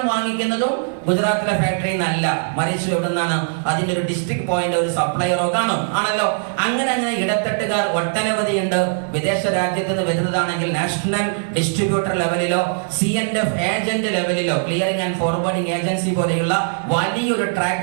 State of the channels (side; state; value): left; silent; digital silence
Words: വാങ്ങിക്കുന്നതും ഗുജറാത്തിലെ ഫാക്ടറിയിൽ നിന്നല്ല, മറിച്ച് എവിടെ നിന്നാണ്? അതിന്റെ ഒരു ഡിസ്ട്രിക്ട് പോയിന്റ്, ഒരു സപ്ലയറോ കാണും, ആണല്ലോ. അങ്ങനെ അങ്ങനെ ഇടത്തട്ടുകാർ ഒട്ടനവധി ഉണ്ട്. വിദേശ രാജ്യത്ത് നിന്ന് വരുന്നതാണെങ്കിൽ നാഷണൽ ഡിസ്ട്രിബ്യൂട്ടർ ലെവലിലോ CNF ഏജന്റ് ലെവലിലോ, ക്ലിയറിംഗ് ആൻഡ് ഫോർവേഡിംഗ് ഏജൻസി പോലെയുള്ള വലിയൊരു